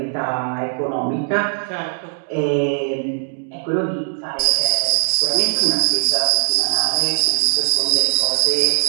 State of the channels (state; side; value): silent; left; 56 dB below the other